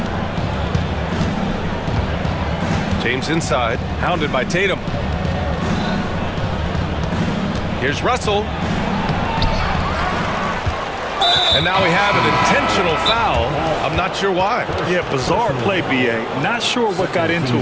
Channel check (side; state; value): both; identical; correlation 1.00